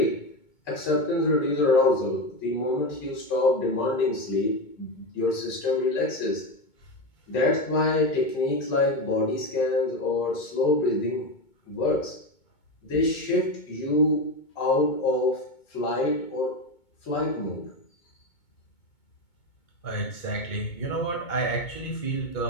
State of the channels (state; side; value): late; right; 2.2 ms